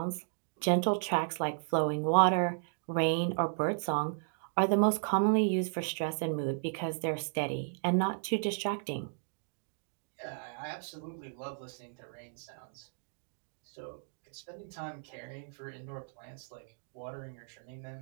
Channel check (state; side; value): silent; left; digital silence